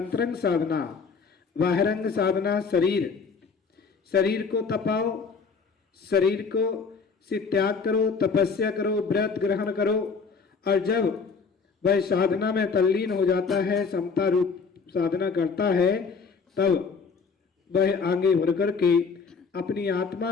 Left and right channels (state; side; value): quieter; right; 5.2 dB